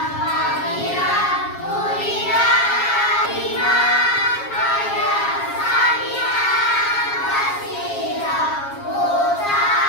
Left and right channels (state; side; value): late; right; 7.3 ms